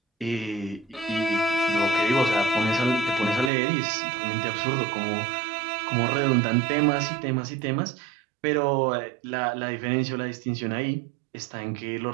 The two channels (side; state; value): left; drops out; at 3.5 s